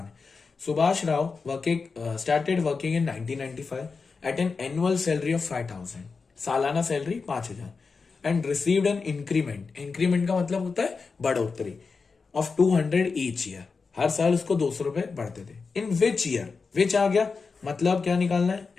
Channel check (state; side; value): quieter; right; 4.7 dB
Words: है। Subhash Rao started working in 1995 at an annual salary of 5000, सालाना salary 5000, and received an increment. Increment का मतलब होता है बढ़ोतरी, ऑफ 200 ईच ईयर। हर साल उसको 200 रुपए बढ़ते थे। इन विच ईयर? विच आ गया, मतलब क्या निकालना है?